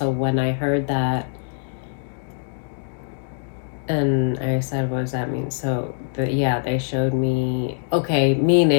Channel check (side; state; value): right; silent; digital silence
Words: when I heard that, and I said, what does that mean? So, they showed me, okay,